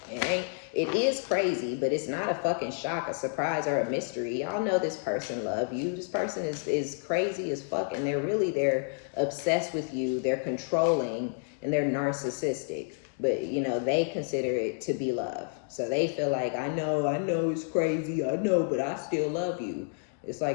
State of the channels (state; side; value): silent; right; 58 dB below the other